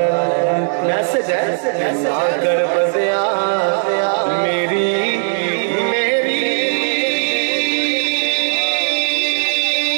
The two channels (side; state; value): left; silent; digital silence